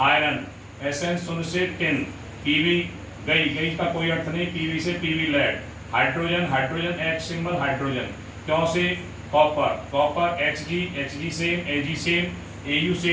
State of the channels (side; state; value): both; identical; correlation 1.00